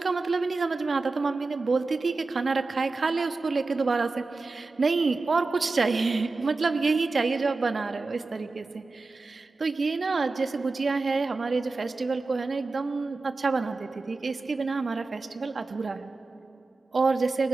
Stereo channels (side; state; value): left; quieter; 3.7 dB